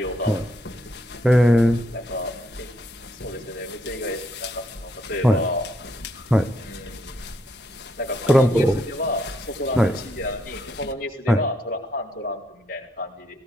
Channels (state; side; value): normal; both; correlation 0.75